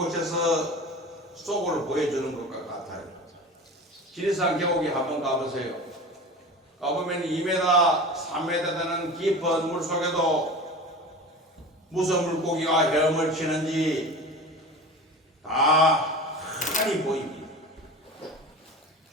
속을 보여주는 것과 같아요. 지리산 계곡에 한번 가보세요. 가보면 2m, 3m 되는 깊은 물 속에도 무슨 물고기가 헤엄을 치는지 다 환히 보입니다.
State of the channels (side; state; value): both; normal; correlation 0.34